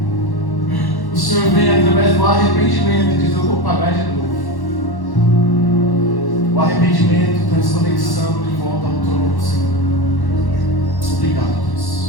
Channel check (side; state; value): right; late; 1.1 ms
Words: o Senhor vem através do arrependimento e diz: eu vou pagar de novo. O arrependimento traz conexão de volta ao trono do Senhor. Obrigado,